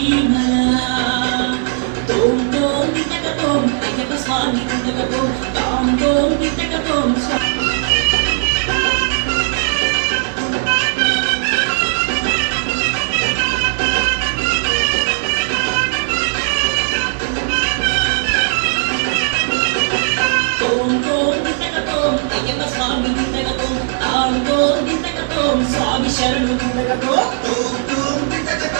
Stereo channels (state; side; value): silent; left; 58 dB below the other